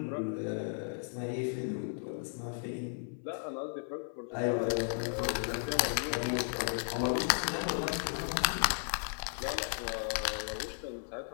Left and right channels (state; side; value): silent; right; 54 dB below the other